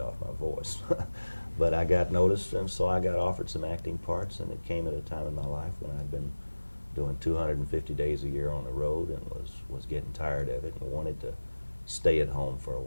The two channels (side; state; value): both; inverted; correlation -1.00